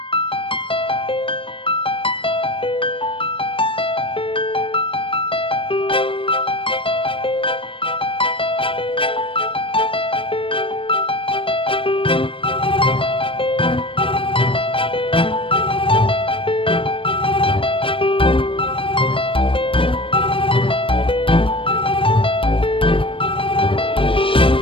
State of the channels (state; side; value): late; right; 0.25 ms